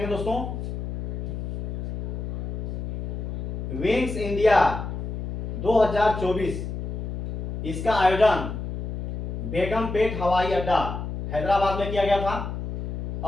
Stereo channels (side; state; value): left; noise; hum, 4 dB below the sound